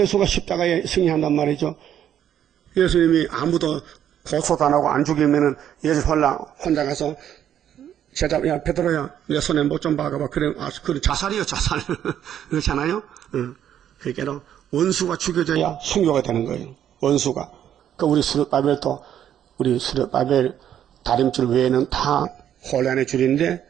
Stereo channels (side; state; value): left; quieter; 10.2 dB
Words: 십자가에 승리한단 말이죠. 예수님이 아무도 고소도 안 하고 안 죽이면은 예수 혼자 가서 제자, 야, 베드로야, 내 손에 못 좀 박아봐. 그래, 그래, 자살이요, 자살. 그렇잖아요? 그러니까 원수가 죽여져야 순교가 되는 거예요. 원수가. 우리 수르바벨도, 우리 수르바벨 다림줄 외에는 다 혼란의 줄인데